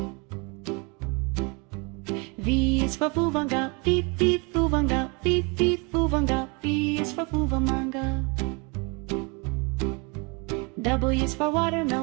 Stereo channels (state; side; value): quieter; left; 31.0 dB